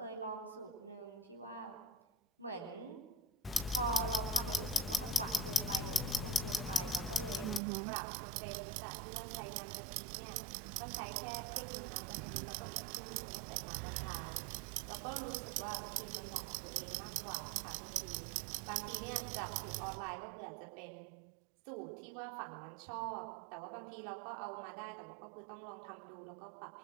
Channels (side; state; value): left; drops out; at 7.6 s